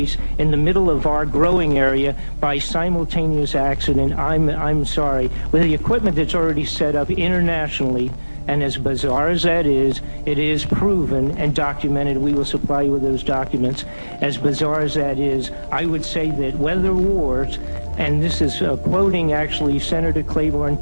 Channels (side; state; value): both; inverted; correlation -1.00